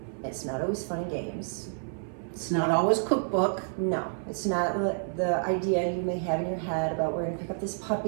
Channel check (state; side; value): silent; left; 58 dB below the other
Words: It's not always fun and games. It's not always cookbook. No, it's not the idea you may have in your head about we're going to pick up this